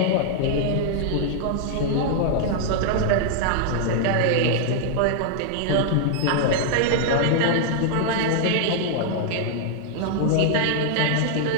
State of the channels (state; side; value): different; both; correlation 0.00